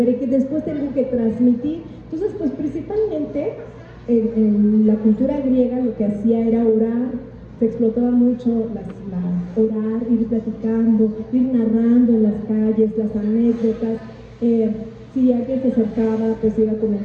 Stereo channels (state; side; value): identical; both; correlation 1.00